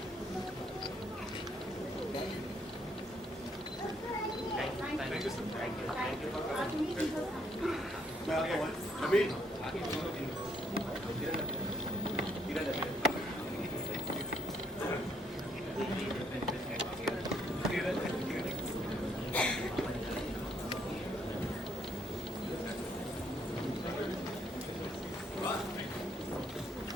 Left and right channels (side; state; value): both; normal; correlation 0.71